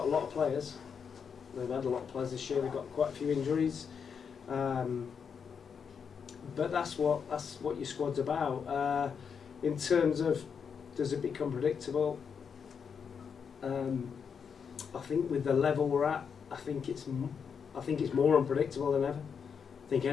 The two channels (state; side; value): quieter; right; 6.6 dB